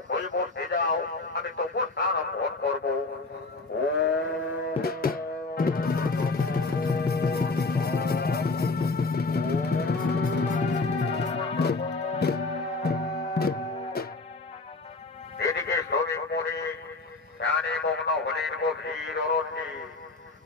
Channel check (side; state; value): right; quieter; 3.6 dB